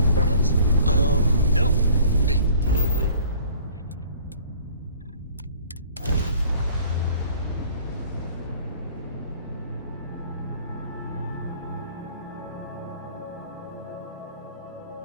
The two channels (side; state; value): both; inverted; correlation -0.52